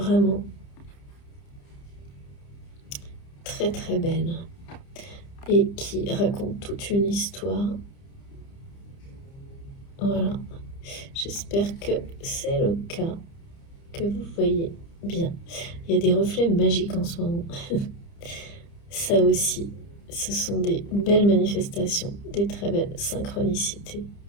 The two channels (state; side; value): late; right; 30 ms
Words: très très belles et qui racontent toute une histoire. Voilà, j'espère que c'est le cas, que vous voyez bien. Il y a des reflets magiques en ce moment. Ça aussi, ce sont des belles manifestations, des très belles synchronicités.